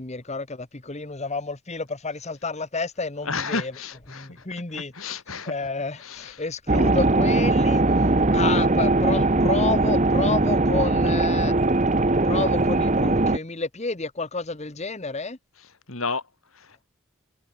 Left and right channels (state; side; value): normal; both; correlation 0.35